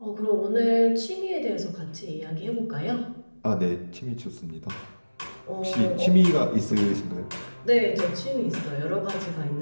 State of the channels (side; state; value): both; inverted; correlation -1.00